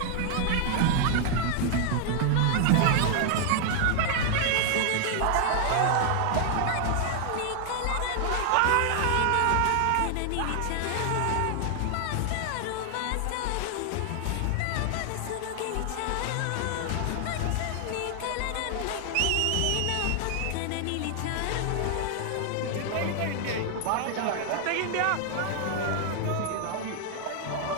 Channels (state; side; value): different; both; correlation 0.00